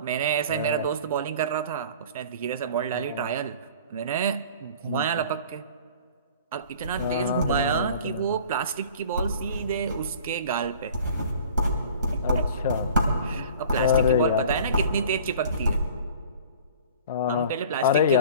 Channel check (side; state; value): both; inverted; correlation -0.45